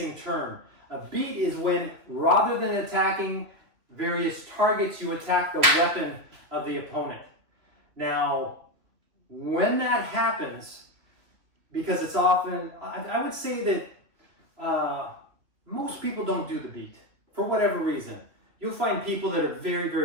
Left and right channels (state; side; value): late; left; 2.9 ms